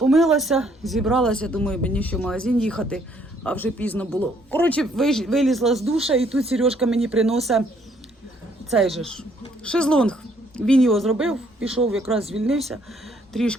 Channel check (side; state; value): both; normal; correlation 0.66